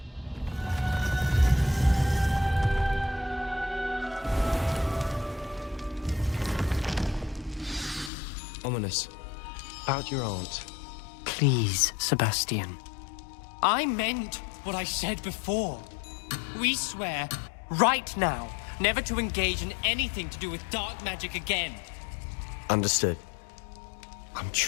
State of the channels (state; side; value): drops out; right; at 8.1 s